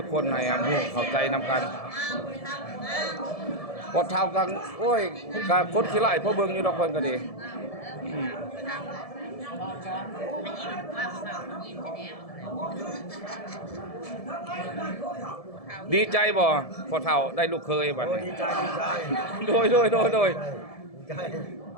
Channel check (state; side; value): late; right; 1.7 ms